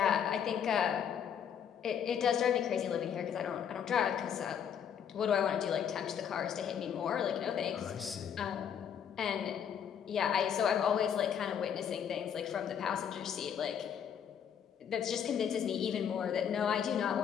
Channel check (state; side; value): quieter; right; 8.3 dB